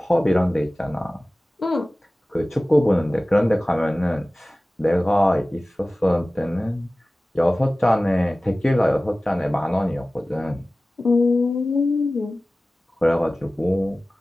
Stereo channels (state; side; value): normal; both; correlation 0.97